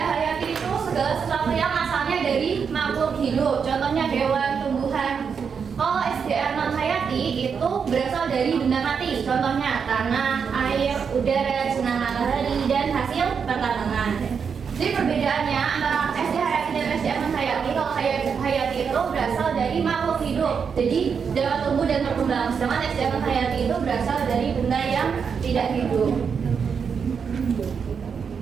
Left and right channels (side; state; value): left; quieter; 6.4 dB